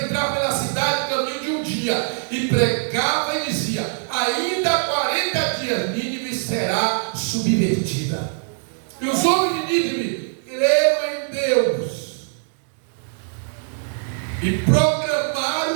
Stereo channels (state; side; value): silent; left; 63 dB below the other